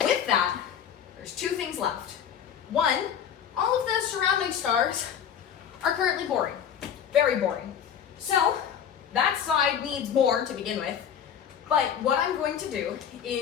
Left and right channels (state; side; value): quieter; right; 8.6 dB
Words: With that, there's two things left. One, all of the surrounding stars are currently boring. Very boring. So that side needs more to begin with. But what I'm going to do